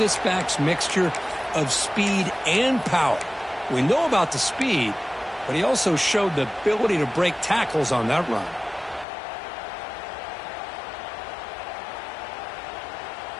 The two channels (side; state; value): right; drops out; at 9.1 s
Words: back's mixture of speed and power. We know about the speed, but he also showed the ability to break tackles on that run.